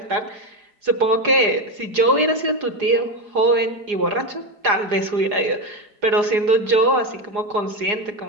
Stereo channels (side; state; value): left; late; 4.8 ms